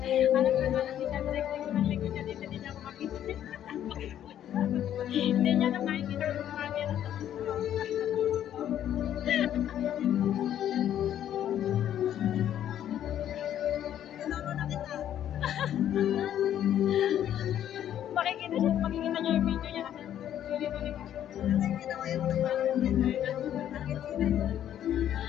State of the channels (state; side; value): quieter; right; 10.8 dB